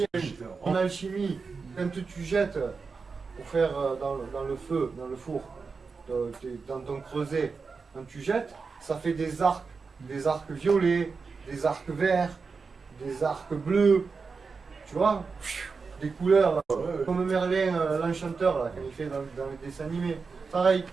en alchimie, quand tu jettes pour faire dans le feu, dans le four, dans ton creuset, quand tu jettes, ça fait des arcs violets, des arcs verts, des arcs bleus, tu vois, des couleurs, là, comme Merlin, l'enchanteur, là, quand il fait dans les dessins animés. Pareil.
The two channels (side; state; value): left; quieter; 4.8 dB